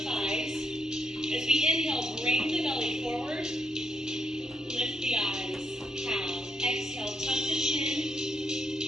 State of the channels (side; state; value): both; normal; correlation 0.77